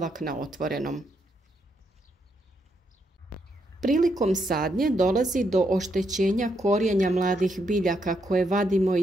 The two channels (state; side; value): normal; both; correlation 0.78